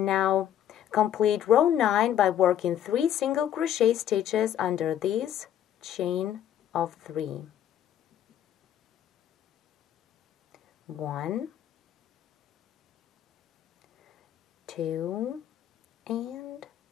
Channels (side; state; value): right; quieter; 10.6 dB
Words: now complete row 9 by working 3 single crochet stitches under this chain of 3. 1, 2, and